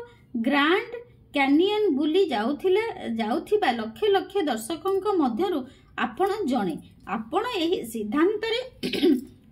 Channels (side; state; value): both; identical; correlation 1.00